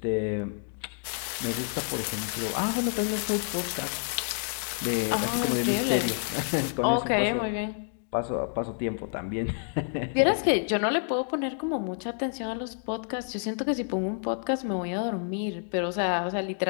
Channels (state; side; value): silent; right; 59 dB below the other